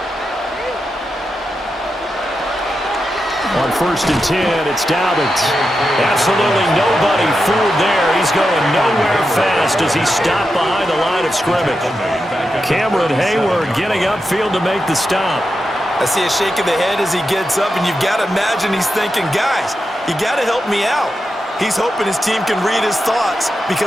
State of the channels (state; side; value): normal; both; correlation 0.88